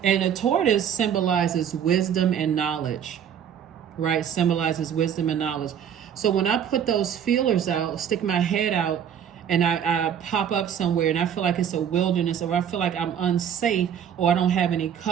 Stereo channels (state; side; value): quieter; left; 8.7 dB